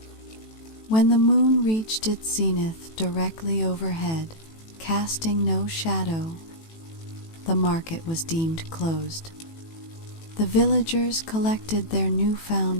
When the moon reached its zenith directly overhead, casting no shadow, the market was deemed closed. The villagers collected their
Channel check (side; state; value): right; late; 18 ms